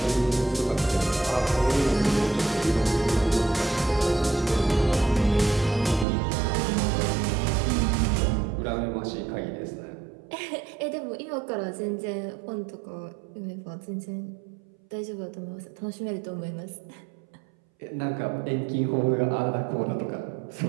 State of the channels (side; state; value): left; drops out; at 6.1 s